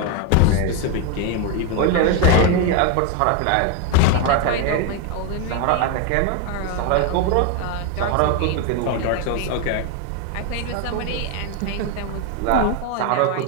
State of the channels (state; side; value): different; both; correlation 0.02